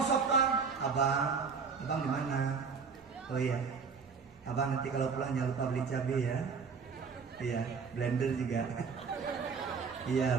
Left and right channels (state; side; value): quieter; left; 5.6 dB